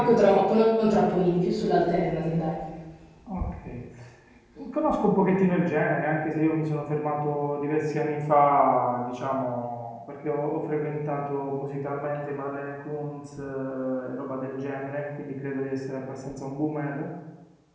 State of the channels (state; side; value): identical; both; correlation 1.00